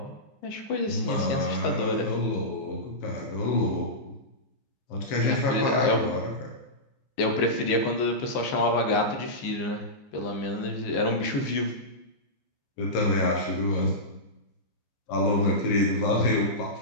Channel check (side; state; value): right; late; 15 ms